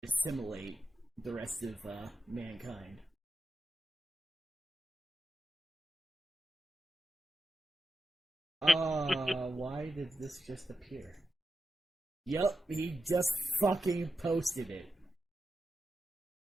Assimilate the rest of mankind. Why did this just appear? Yup, he just fucking posted it.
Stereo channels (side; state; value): both; normal; correlation 0.90